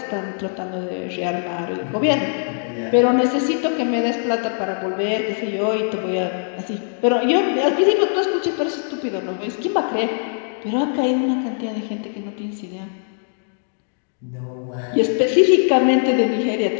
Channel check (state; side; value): silent; right; 61 dB below the other